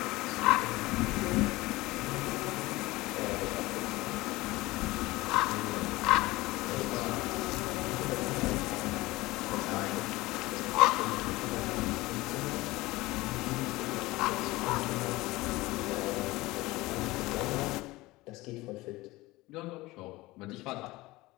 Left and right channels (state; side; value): quieter; right; 20.1 dB